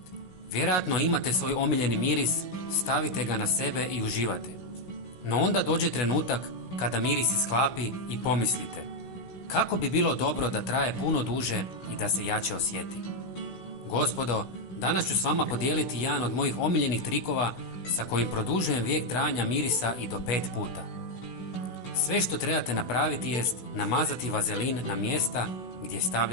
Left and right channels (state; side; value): late; right; 16 ms